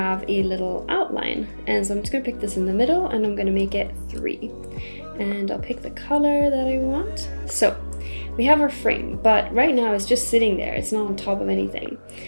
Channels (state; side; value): inverted; both; correlation -1.00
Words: a little outline. And so I'm just going to pick this in the middle and I'm going to make it 3. And I'll pick the color that I want. So we have our frame, but right now it's just sitting there. It's not on top of anything.